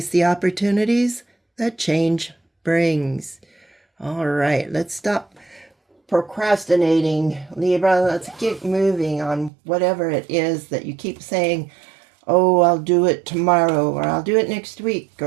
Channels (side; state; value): left; drops out; at 9.5 s